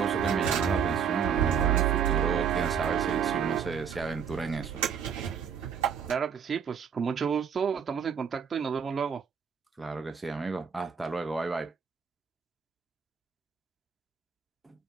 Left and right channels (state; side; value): quieter; left; 7.2 dB